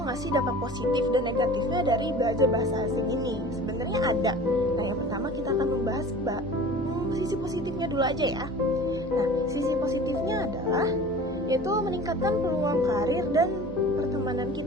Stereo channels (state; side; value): normal; both; correlation 0.41